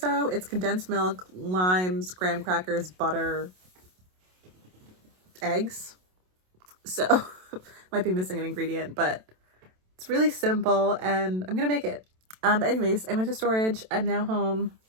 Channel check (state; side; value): late; left; 27 ms